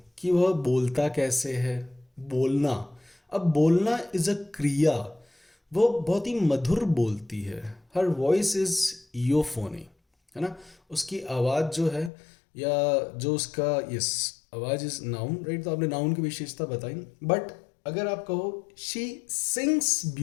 कि वह बोलता कैसे है। बोलना, अब बोलना इज़ अ क्रिया, वो बहुत ही मधुर बोलती है, हर वॉइस इज़ यूफोनी, है ना, उसकी आवाज़ जो है, या जो उसका, यस, आवाज़ इज नाउन, राइट। तो आपने नाउन की विशेषता बताई, बट अगर आप कहो she sings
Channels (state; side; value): drops out; right; at 12.1 s